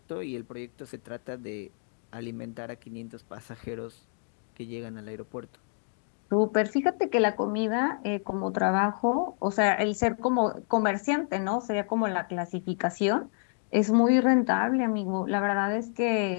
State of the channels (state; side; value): silent; right; 59 dB below the other